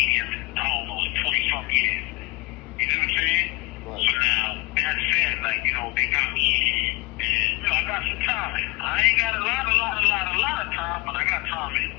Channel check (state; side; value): quieter; right; 21.4 dB